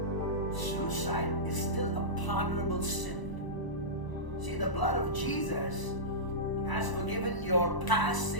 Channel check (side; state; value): right; late; 1.0 ms